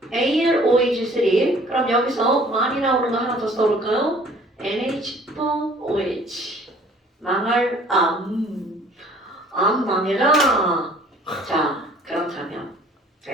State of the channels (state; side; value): normal; both; correlation 0.54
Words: AlOH3. 그럼 여기서 많이 나오는 거 하나 더 써볼까요? NH4OH. 망할 암 망해라. 자, 그렇다면